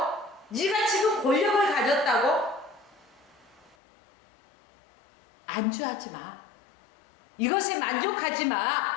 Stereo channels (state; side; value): drops out; right; at 3.8 s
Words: 네가 지금 권력을 가졌다고 안주하지 마. 이것에 만족하지